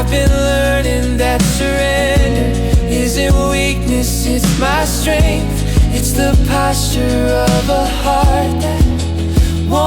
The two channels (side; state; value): both; identical; correlation 1.00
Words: been learning that surrender isn't weakness, it's my strength. It's the posture of a heart that